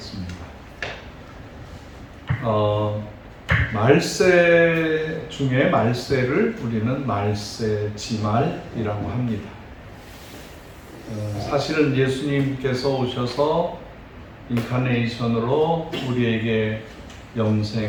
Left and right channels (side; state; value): both; identical; correlation 1.00